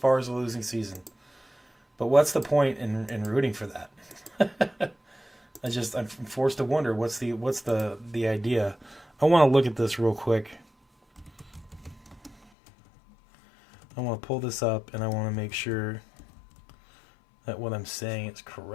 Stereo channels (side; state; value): right; drops out; at 12.5 s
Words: as a losing season. But what's the point in rooting for that? I'm forced to wonder what's the idea. I want to look at this real quick. I want to pull this up and I want to make sure that what I'm saying is